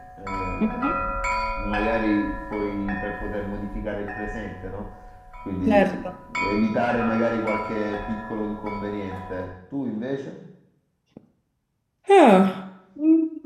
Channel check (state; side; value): identical; both; correlation 1.00